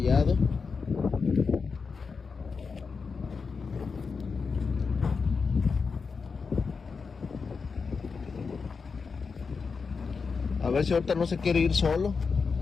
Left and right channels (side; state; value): right; quieter; 5.1 dB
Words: A ver si ahorita no se quiere ir solo.